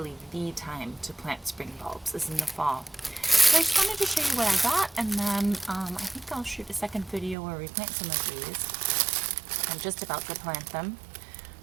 the time to plant spring bulbs, is in the fall. So I just wanted to show you what I got, and then I think I'll shoot a second video where we plant some of these. I'm just about to plant them.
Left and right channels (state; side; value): drops out; left; at 7.4 s